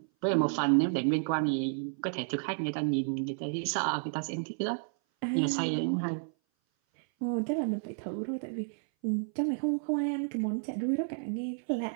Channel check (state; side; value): silent; left; 57 dB below the other